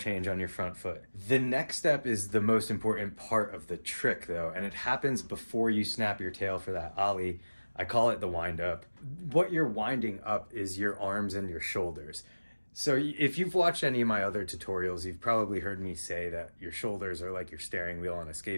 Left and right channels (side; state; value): both; inverted; correlation -1.00